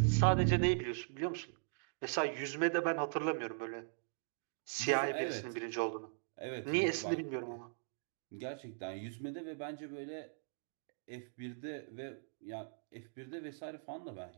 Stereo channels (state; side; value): silent; left; digital silence